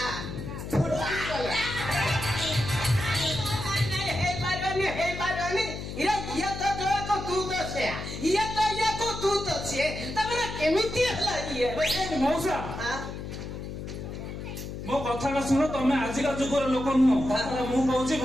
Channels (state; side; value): noise; left; hum, 8 dB below the sound